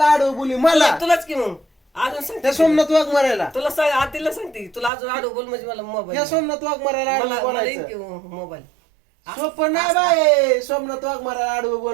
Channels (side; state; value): left; drops out; at 4.9 s